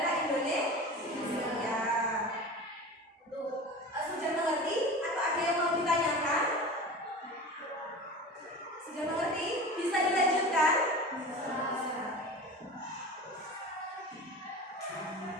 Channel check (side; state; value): both; normal; correlation 0.33